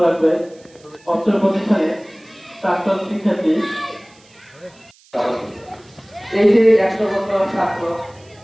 রাখবে পত্র প্রতিষ্ঠানে প্রাক্তন শিক্ষার্থী। এই যে 100 বছর ছাত্র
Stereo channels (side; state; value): right; noise; hiss, 29 dB below the sound